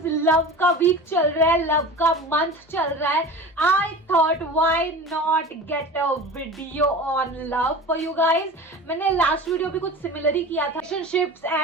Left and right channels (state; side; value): normal; both; correlation 0.35